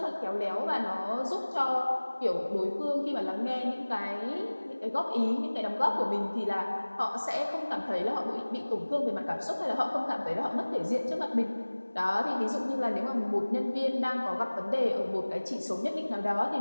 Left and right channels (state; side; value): inverted; both; correlation -1.00